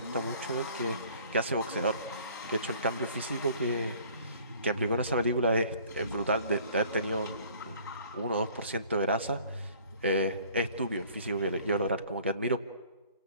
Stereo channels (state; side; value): inverted; both; correlation -0.53